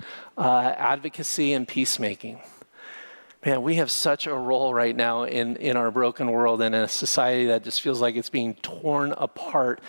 advocacy and peacemaking. Man, we have such a role right now in our broken world and in a society that just feels like it's being torn apart,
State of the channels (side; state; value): both; inverted; correlation -1.00